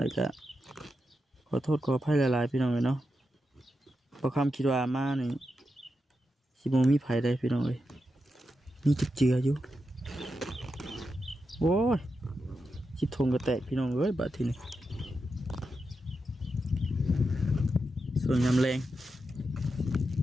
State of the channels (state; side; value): normal; both; correlation 0.87